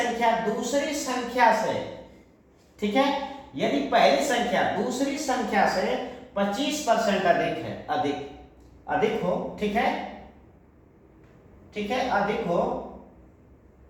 दूसरी संख्या से, ठीक है, यदि पहली संख्या दूसरी संख्या से 25% अधिक है, अधिक हो, ठीक है, ठीक है, अधिक हो,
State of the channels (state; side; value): identical; both; correlation 1.00